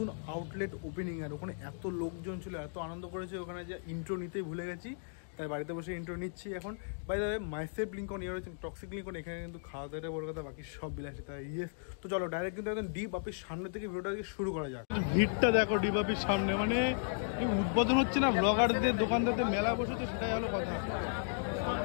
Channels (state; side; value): silent; right; digital silence